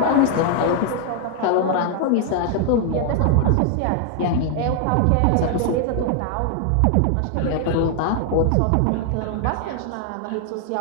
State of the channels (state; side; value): different; both; correlation 0.00